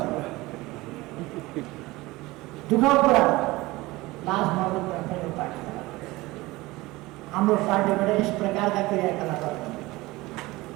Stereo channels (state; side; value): quieter; left; 20.4 dB